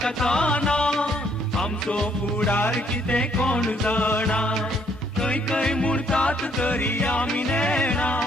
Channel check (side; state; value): both; normal; correlation 0.68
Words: आमचो फुडार किते कोण जाणा. खय खय म्हणतात तरी आम्ही